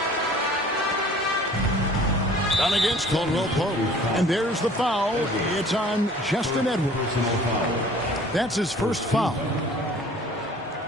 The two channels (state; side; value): normal; both; correlation 0.50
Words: Done against Caldwell Pope. And there's the foul. It's on Justin Edwards. That's his first foul.